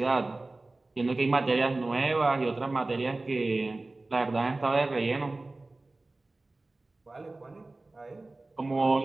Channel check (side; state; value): left; quieter; 3.1 dB